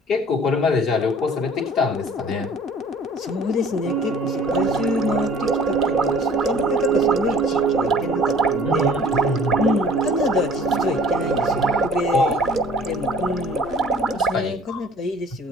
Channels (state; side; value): normal; both; correlation 0.52